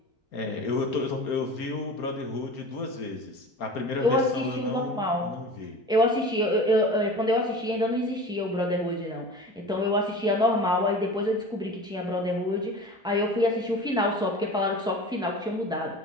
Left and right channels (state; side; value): normal; both; correlation 0.36